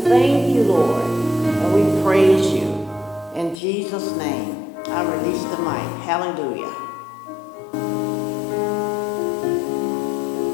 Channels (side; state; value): right; drops out; at 3.6 s